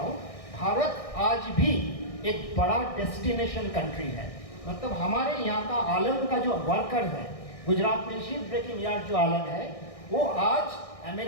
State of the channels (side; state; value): right; late; 1.6 ms